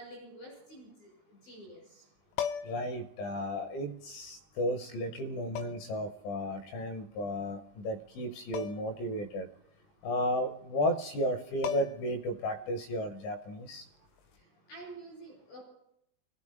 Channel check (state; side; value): late; right; 20 ms